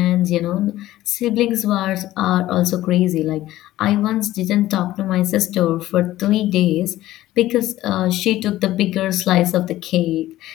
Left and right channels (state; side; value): quieter; right; 15.1 dB